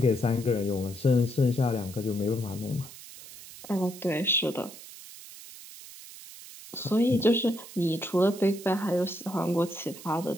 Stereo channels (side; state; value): right; noise; hiss, 16 dB below the sound